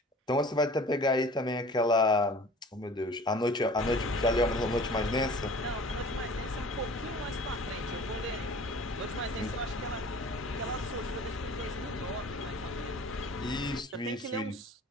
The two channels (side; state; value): both; normal; correlation 0.45